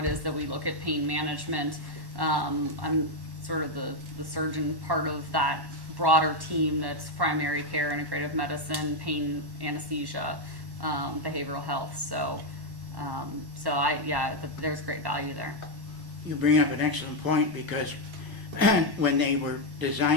is that we look at pain management. I'm sort of the surgeon part of that broader team that's primary care, integrative medicine, pain, anesthesia, behavioral health. So there's great value there. You bring up an excellent point because when they were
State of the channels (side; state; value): left; late; 1.1 ms